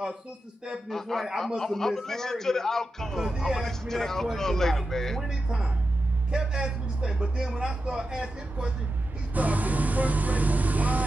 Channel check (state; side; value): normal; both; correlation 0.90